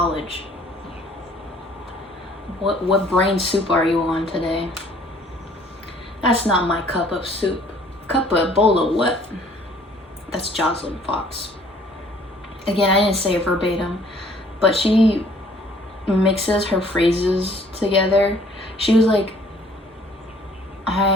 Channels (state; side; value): normal; both; correlation 0.58